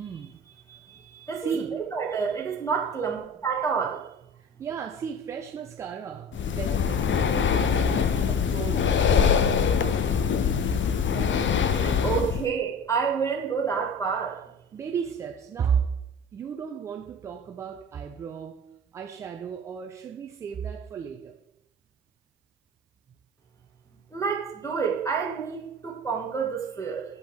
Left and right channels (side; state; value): both; normal; correlation 0.36